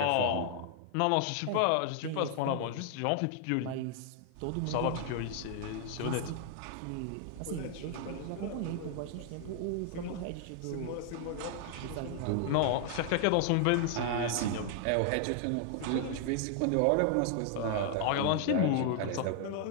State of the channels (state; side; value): different; both; correlation 0.00